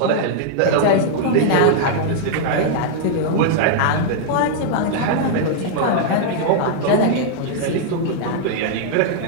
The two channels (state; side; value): different; both; correlation -0.01